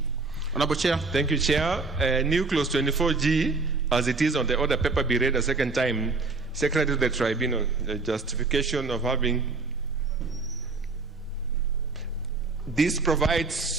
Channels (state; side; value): quieter; left; 3.9 dB